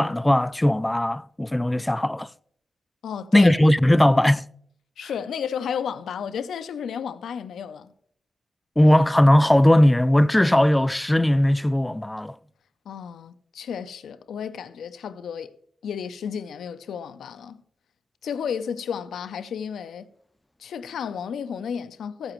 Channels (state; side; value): normal; both; correlation 0.98